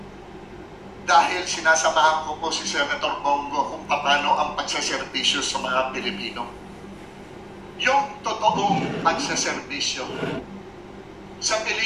dahil sinasamahan ko po si Senator Bongo kung paano ang pagsaserbisyo sa mga Pilipino. Yung totoong pagsaserbisyo. Sa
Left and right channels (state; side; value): identical; both; correlation 1.00